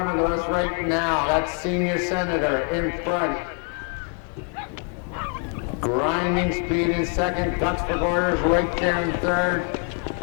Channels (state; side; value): quieter; right; 38.2 dB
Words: of us right now, that's Senior Senator in front. Grinding Speed in second, Guts for Garters right there in third.